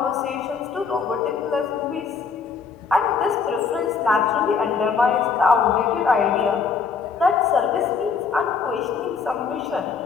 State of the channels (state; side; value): quieter; right; 5.6 dB